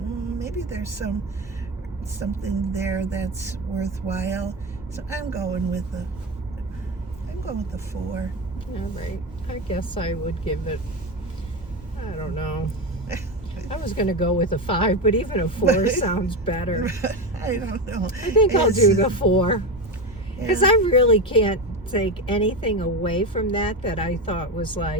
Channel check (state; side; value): normal; both; correlation 0.18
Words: maybe there's something there that's worthwhile. So I'm going with the 4. All right. I guess I would give it, I don't know. I was going to go with a 5, but even a 4 sounds better. I don't know. I think I'll do the 4. Because I really can't take anything away from that I thought was